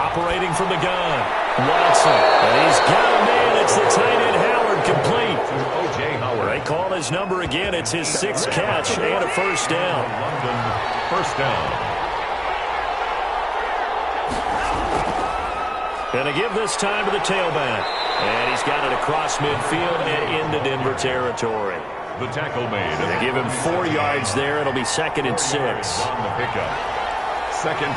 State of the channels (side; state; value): both; identical; correlation 1.00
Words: from the gun, Watson. And he's got a man. It's the tight end Howard, complete. O.J. Howard. They call his number again. It's his 6th catch and a first down. London, first down. And to give this time to the tailback. And he's got it across midfield and into Denver territory. The tackle made. They give him 4 yards there. It'll be 2nd and 6. On the pickup. 2nd